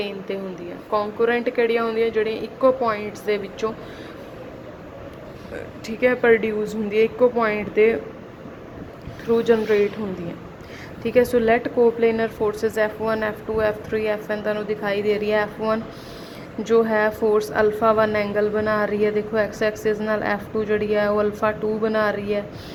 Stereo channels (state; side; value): identical; both; correlation 1.00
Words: ते होंदियां, कॉन्करेंट किहड़ियां होंदियां जड़ियां इक्को पॉइंट्स दे विचों ठीक है प्रोड्यूस होंदी है, इक्को पॉइंट के थ्रू जनरेट होंदी है। ठीक है, so let coplanar forces F1 F2 F3 Fn तुहानूं दिखाई दे रही है। F1 जो है फोर्स अल्फा 1 एंगल बना रही है, देखो एक्स एक्सिस नाल। F2 जड़ी है वो अल्फा 2 बना रही है।